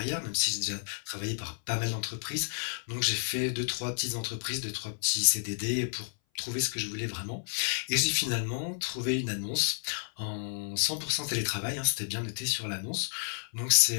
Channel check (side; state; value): right; silent; 57 dB below the other